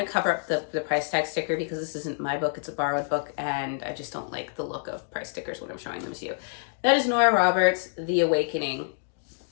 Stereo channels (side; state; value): right; silent; digital silence